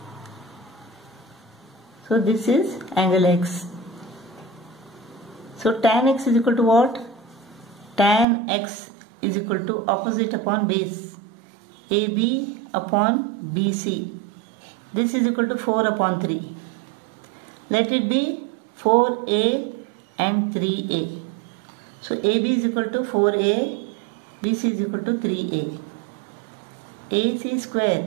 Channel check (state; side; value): drops out; left; at 8.2 s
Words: So this is angle x. So tan x is equal to what? Tan x is equal to opposite upon base. AB upon BC. This is equal to 4 upon 3. Let it be 4a and 3a. So AB is equal to 4a, BC is equal to 3a. AC square